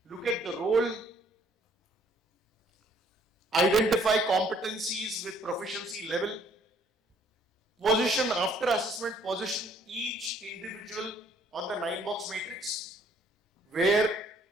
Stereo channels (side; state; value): both; normal; correlation 0.62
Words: look at the role, identify competencies with proficiency level, position after assessment, position each individual on the 9-box matrix. Where